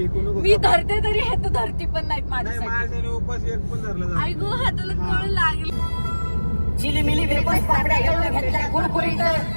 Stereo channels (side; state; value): both; inverted; correlation -1.00